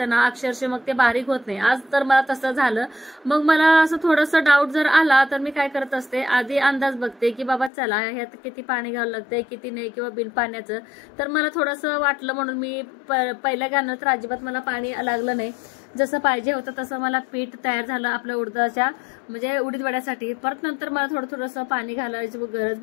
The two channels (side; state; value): right; drops out; at 7.7 s